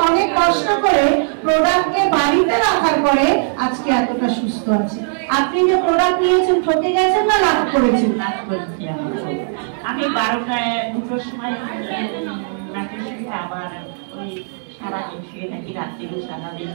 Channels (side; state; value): left; silent; digital silence